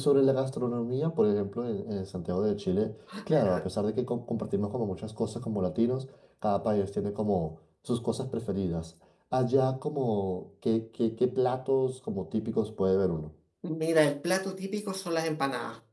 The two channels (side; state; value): both; identical; correlation 1.00